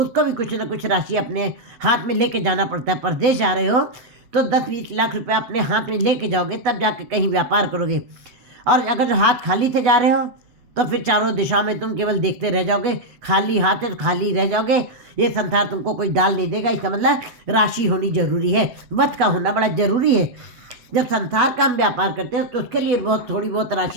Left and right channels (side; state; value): left; late; 8.3 ms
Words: भी कुछ न कुछ राशि अपने हाथ में लेके जाना पड़ता है। परदेश जा रहे हो तो 10-20 लाख रुपए अपने हाथ में लेके जाओगे तब जाके कहीं व्यापार करोगे। और अगर हाथ खाली से जा रहे हो तो फिर चारों दिशाओं में तुम केवल देखते रह जाओगे, खाली हाथ है तो खाली रह जाओगे। ये संसार तुमको कोई डाल नहीं देगा। इसका मतलब राशि होनी जरूरी है, वध का होना बड़ा जरूरी है। जब संसार का हम व्यापार करते हैं तो उसके लिए थोड़ी बहुत